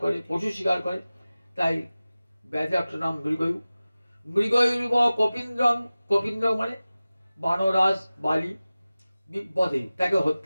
করে, পশু শিকার করে, তাই ব্যাধের একটা নাম মৃগয়ু। মৃগয়ুরিব কপীন্দ্রং, কপীন্দ্র মানে বানরাজ বালি, বিপদে তাকে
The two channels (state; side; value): inverted; both; correlation -0.97